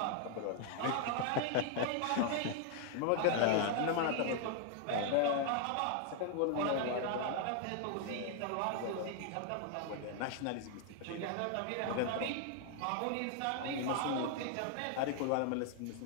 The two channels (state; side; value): different; both; correlation 0.00